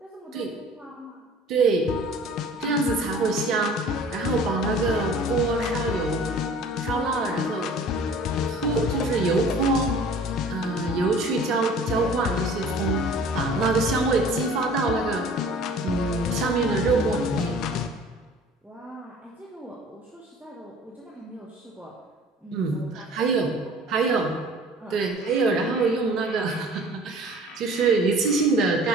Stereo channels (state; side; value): normal; both; correlation 0.47